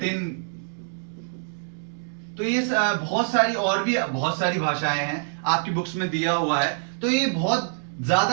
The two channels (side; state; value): left; silent; digital silence